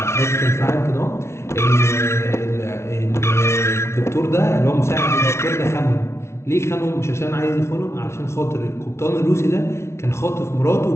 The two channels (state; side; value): late; right; 0.13 ms